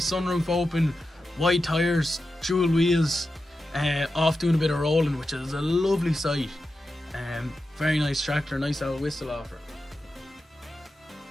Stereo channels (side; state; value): both; normal; correlation 0.91